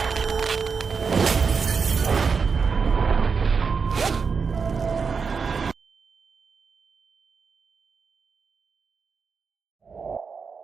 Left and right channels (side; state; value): left; quieter; 5.4 dB